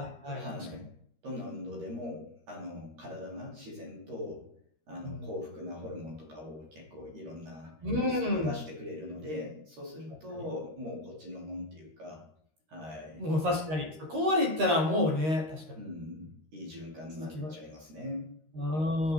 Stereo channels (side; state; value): left; late; 13 ms